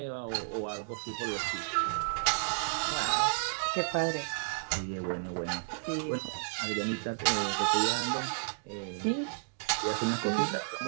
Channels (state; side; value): silent; left; digital silence